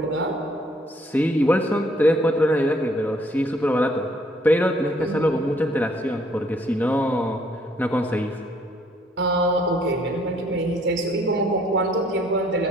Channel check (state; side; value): normal; both; correlation 0.64